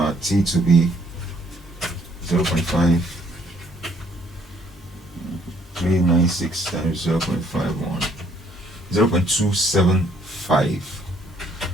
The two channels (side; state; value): both; normal; correlation 0.66